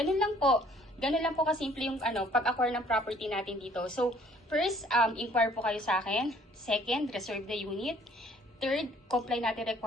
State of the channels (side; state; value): both; normal; correlation 0.59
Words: lang po. Ganun lang po kasimple yung pag-acquire ng property natin dito. So, first, inquire po kayo sa akin. Second, reserve the unit. Third, comply natin